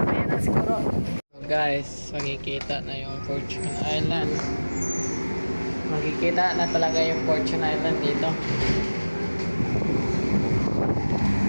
na siguro. So guys, makikita na yung Fortune Island. Makikita na talaga yung Fortune Island dito.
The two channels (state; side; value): inverted; both; correlation -1.00